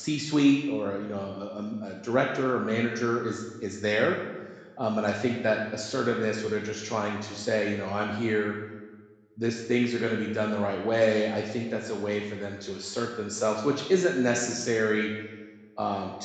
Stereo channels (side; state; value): both; identical; correlation 1.00